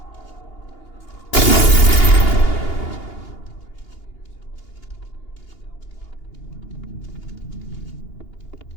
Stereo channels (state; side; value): late; right; 2.8 ms